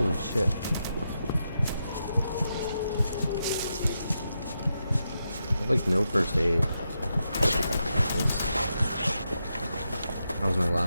shit. I have like no first aid. That was my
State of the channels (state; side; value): inverted; both; correlation -0.85